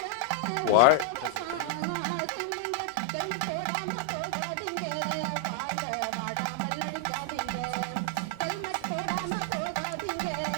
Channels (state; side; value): different; both; correlation 0.00